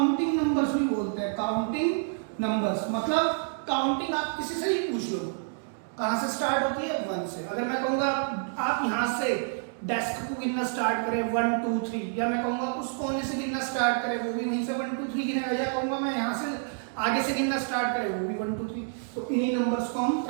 नंबर्स भी बोलते हैं। काउंटिंग नंबर्स मतलब काउंटिंग आप किसी से ही पूछ लो, कहां से स्टार्ट होती है? 1 से। अगर मैं कहूंगा आप यहां से डेस्क को गिनना स्टार्ट करें 1 2 3, या मैं कहूंगा उस कोने से गिनना स्टार्ट करें, वो भी वहीं से 1 2 3 गिनेगा, या कहूंगा मैं यहां से आगे से गिनना स्टार्ट करें, वो भी 1 2 3। तो इन्हीं नंबर्स को हम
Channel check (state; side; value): silent; left; digital silence